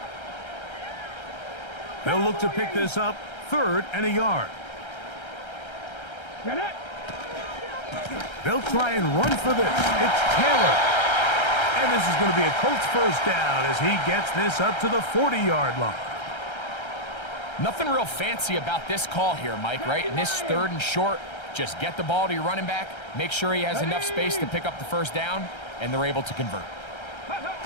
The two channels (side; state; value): right; late; 1.3 ms